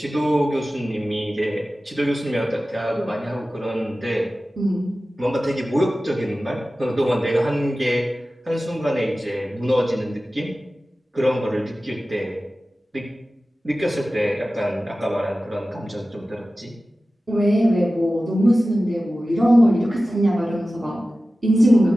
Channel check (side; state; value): both; normal; correlation 0.96